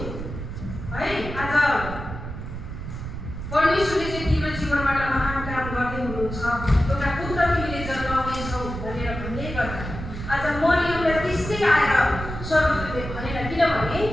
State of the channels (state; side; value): noise; right; rumble, 8 dB below the sound